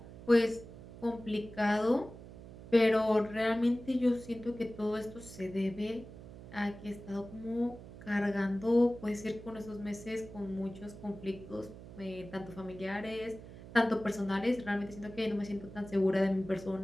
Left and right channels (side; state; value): right; noise; hum, 15 dB below the sound